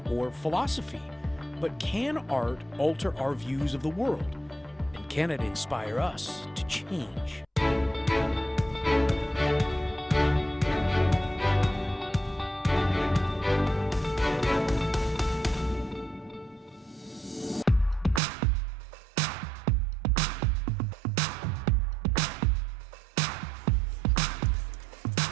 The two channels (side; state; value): left; drops out; at 18.2 s